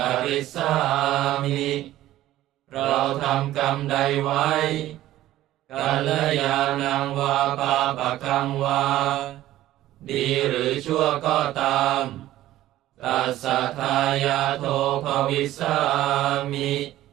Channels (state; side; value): quieter; left; 14.5 dB